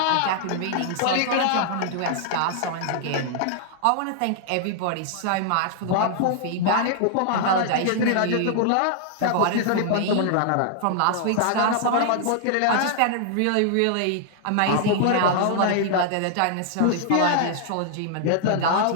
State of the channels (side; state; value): both; different; correlation -0.01